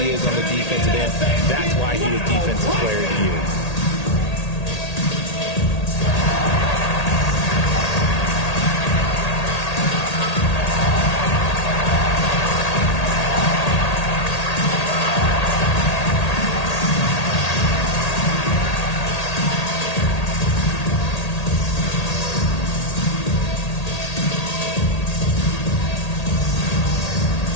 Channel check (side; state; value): right; late; 1.8 ms